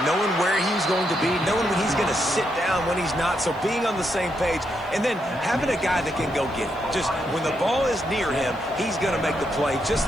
knowing where he's going to be, knowing when he's going to sit down, when he's not. So being on the same page, and then having a guy that can go get it. Just when the ball is near him, he's going to make the play, just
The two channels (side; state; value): left; noise; hiss, 30 dB below the sound